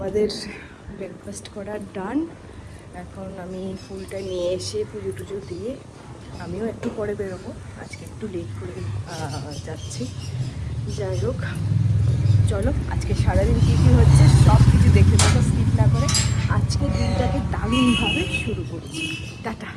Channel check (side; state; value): both; identical; correlation 1.00